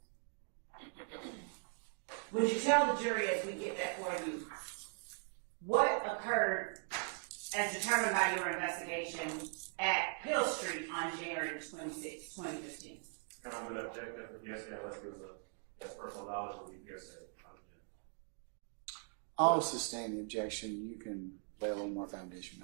Would you tell the jury, as we get that for you, what occurred as determined by your investigation at Hill Street on January 26, 2015? And I'm going to object that the hearsay, unless it was that's personal knowledge will be hearsay. I'll sustain the objection. You can lay a little more foundation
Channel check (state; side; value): silent; left; 51 dB below the other